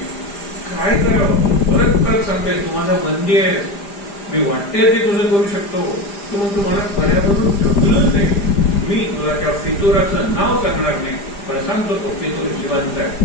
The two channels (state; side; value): late; right; 5.0 ms